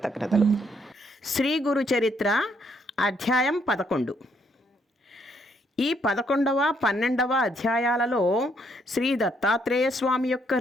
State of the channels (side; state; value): both; normal; correlation 0.71